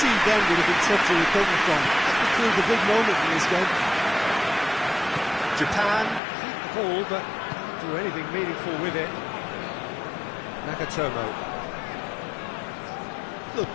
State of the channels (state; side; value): drops out; right; at 6.2 s